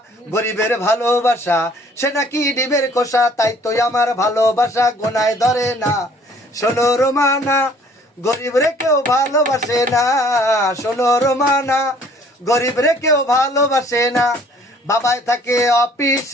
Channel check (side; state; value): both; normal; correlation 0.57